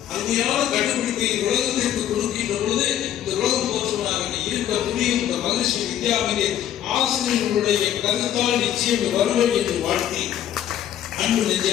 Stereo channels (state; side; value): quieter; right; 11.0 dB